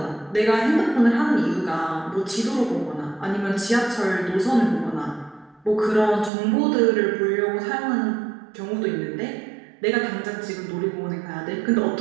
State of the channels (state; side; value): drops out; left; at 6.3 s